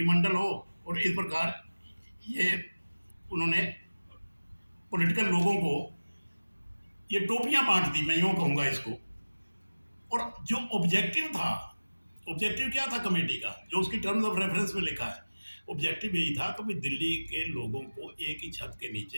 हो, और इस प्रकार ये उन्होंने पॉलिटिकल लोगों को ये टोपियां बांट दी, मैं यूँ कहूँगा इसको। और जो ऑब्जेक्टिव था, ऑब्जेक्टिव क्या था कमेटी का, जो उसकी टर्म्स ऑफ रेफरेंस में लिखा है, ऑब्जेक्टिव यही था कि दिल्ली के लोगों को एक ही छत के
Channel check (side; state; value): both; inverted; correlation -1.00